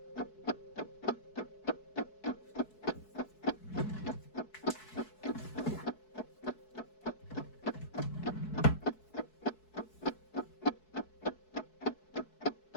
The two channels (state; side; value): late; right; 4.7 ms